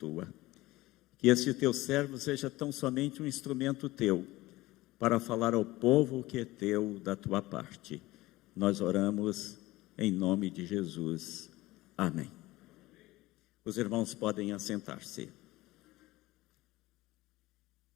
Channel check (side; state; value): right; quieter; 18.7 dB